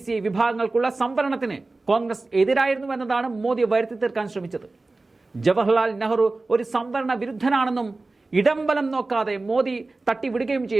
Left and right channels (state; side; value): quieter; left; 3.3 dB